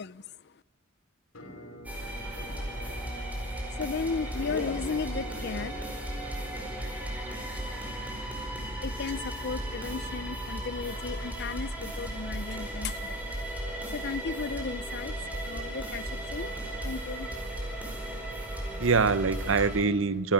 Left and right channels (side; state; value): both; normal; correlation 0.21